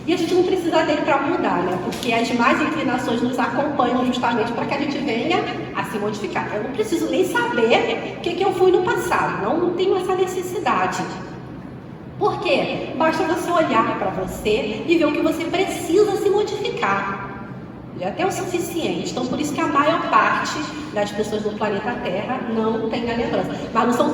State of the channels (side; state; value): both; identical; correlation 1.00